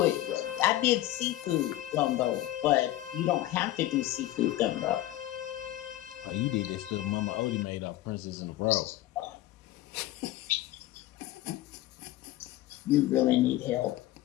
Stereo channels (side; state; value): right; quieter; 15.2 dB